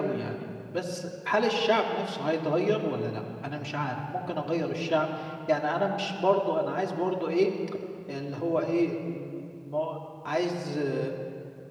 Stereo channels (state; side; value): identical; both; correlation 1.00